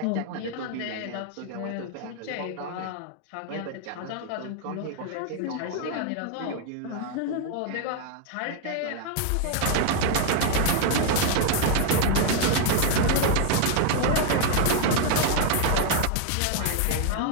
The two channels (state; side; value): different; both; correlation 0.00